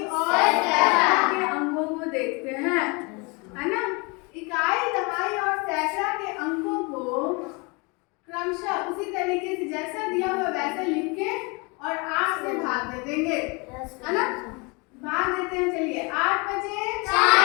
और सैकड़ा के अंकों को देखते हैं, है ना? इकाई, दहाई और सैकड़ा के अंकों को क्रमशः उसी तरीके से जैसा दिया हुआ वैसा लिख के और 8 से भाग दे देंगे, है ना? भाग देते हैं। चलिए 8 बचे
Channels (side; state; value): right; quieter; 29.4 dB